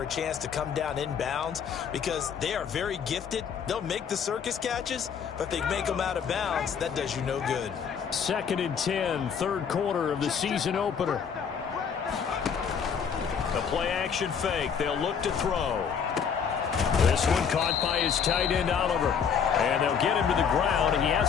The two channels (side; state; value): right; quieter; 7.0 dB